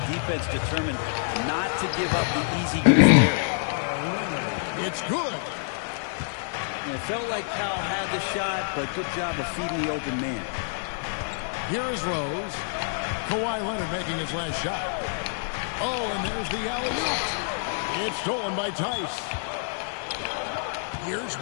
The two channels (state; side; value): silent; right; 56 dB below the other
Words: defense determined not to give up the easy goose there. It's good. And it felt like Powell had the shot, but good job of feeding the open man. Here is Rose. Kawhi Leonard making his last shot. Oh, and there's the alley-oop. It's stolen by Tice. Here's